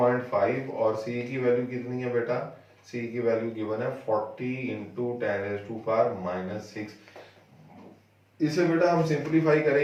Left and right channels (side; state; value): both; identical; correlation 1.00